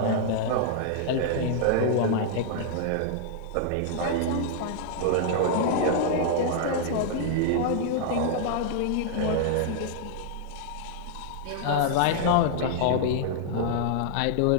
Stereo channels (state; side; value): different; both; correlation -0.01